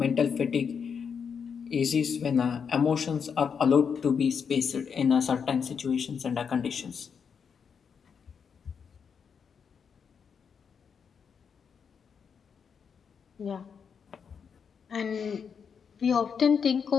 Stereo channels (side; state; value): right; quieter; 6.6 dB